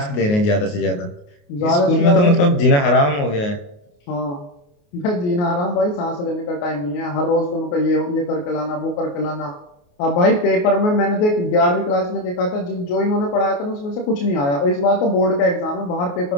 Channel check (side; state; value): right; late; 28 ms